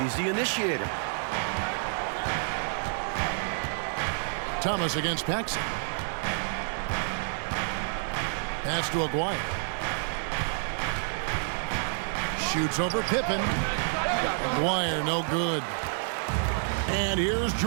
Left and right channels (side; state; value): left; silent; digital silence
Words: He's the initiator. Thomas against Paxson. Pass to Aguirre. Shoots over Pippen. Aguirre, no good. And here's